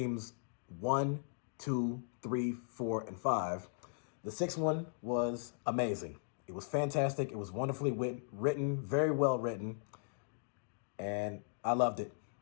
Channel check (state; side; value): silent; right; digital silence